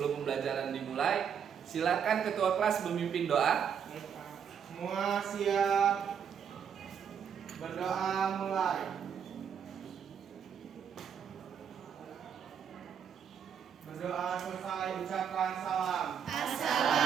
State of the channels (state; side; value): quieter; left; 7.7 dB